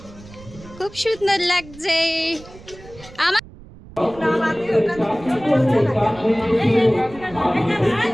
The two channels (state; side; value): noise; right; rumble, 20 dB below the sound